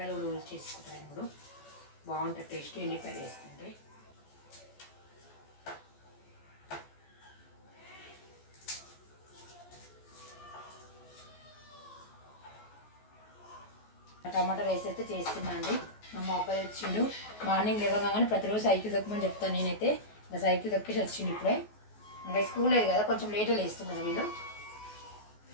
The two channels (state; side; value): late; right; 14 ms